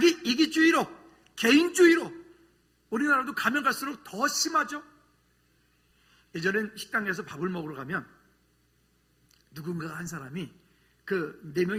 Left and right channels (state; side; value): identical; both; correlation 1.00